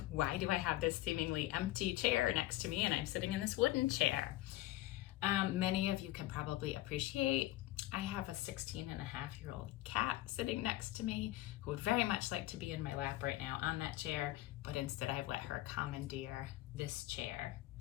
why do I have this seemingly empty chair next to me and I'm sitting in this wooden chair? Many of you can probably appreciate I have a 16-and-a-half-year-old cat sitting next to me who would very much like to be in my lap right now on that chair, but instead I've let her commandeer this chair.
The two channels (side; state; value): right; quieter; 16.5 dB